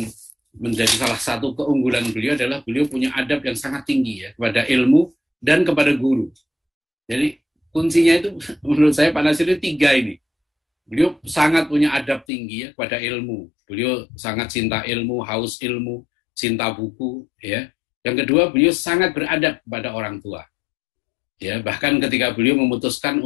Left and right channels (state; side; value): drops out; right; at 12.2 s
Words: menjadi salah satu keunggulan beliau adalah beliau punya adab yang sangat tinggi ya kepada ilmu dan kepada guru. Jadi kuncinya itu menurut saya Pak Natsir itu 3 ini. Beliau sangat punya adab tinggi ya kepada ilmu. Beliau sangat cinta ilmu, haus ilmu, cinta buku ya. Yang kedua, beliau sangat beradab kepada orang tua. Ya, bahkan ketika beliau memutuskan